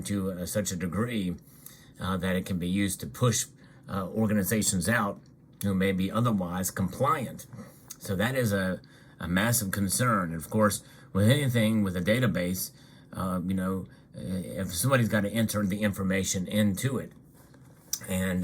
to such a degree that it can be used to push organizations out who may be otherwise compliant. So that is a massive concern. And of course, with anything with a database, if somebody's got to enter the information into it,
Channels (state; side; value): identical; both; correlation 1.00